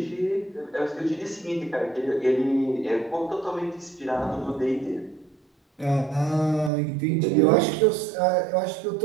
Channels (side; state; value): left; drops out; at 6.7 s